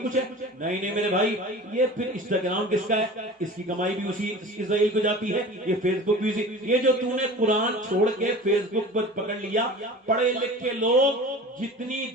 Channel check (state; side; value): normal; both; correlation 0.38